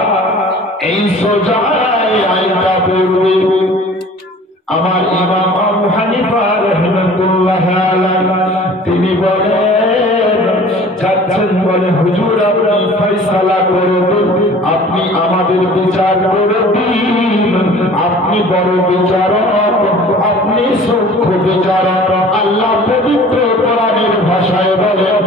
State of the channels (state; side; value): normal; both; correlation 0.47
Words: এই সোজা আইনটা পড়বে। আমার ইমাম আবু হানিফা রাহমাতুল্লাহ আলাইহি, তিনি বলেন, যাচ্ছেন, বলে হুজুর আপনি ফয়সালা করে দিন, আপনি আমাদের বিচার করে দিন, আপনি বড় বিচারক, আপনি সূক্ষ্ম বিচারক। আল্লাহ পবিত্র কোরআনের ভাষায় বলে,